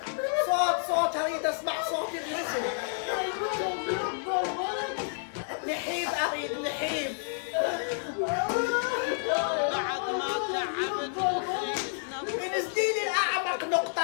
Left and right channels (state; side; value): silent; right; digital silence